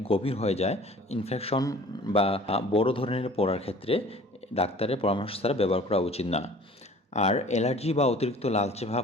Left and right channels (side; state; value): both; normal; correlation 0.48